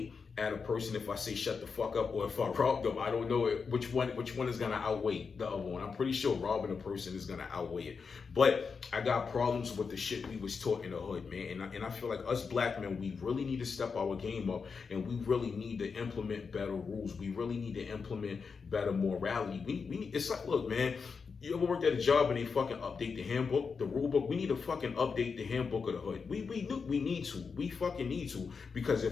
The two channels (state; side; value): quieter; right; 5.4 dB